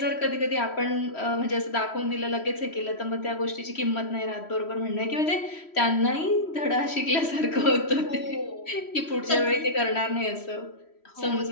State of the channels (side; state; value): right; late; 3.1 ms